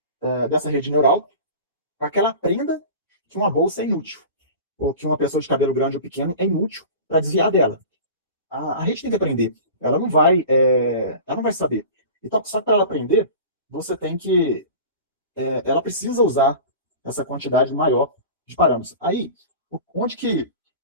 dessa rede neural para que ela aprenda que uma bolsa é inútil, ou que uma pessoa de cabelo grande ou pequeno é inútil para desviar dela. A rede tem que aprender, ela não vai saber. Então, só que para ela aprender, você tem que ela precisa usar essa quantidade maior de parâmetros. Aí, onde que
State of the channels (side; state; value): both; inverted; correlation -0.36